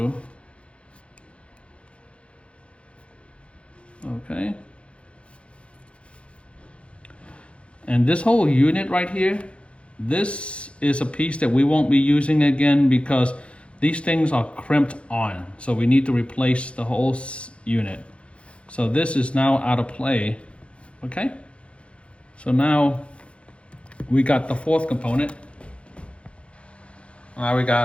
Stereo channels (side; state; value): right; late; 0.060 ms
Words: Okay. And this whole unit right here, this is a piece that we won't be using again because these things are crimped on. So we need to replace the whole unit. So this is now out of play. Okay. So now we got the fourth component. Now we